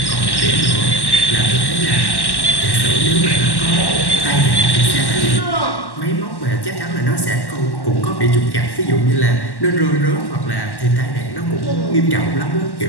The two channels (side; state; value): right; late; 1.1 ms